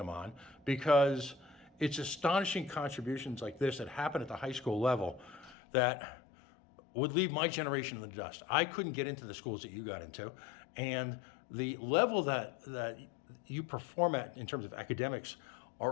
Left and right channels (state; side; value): drops out; right; at 5.6 s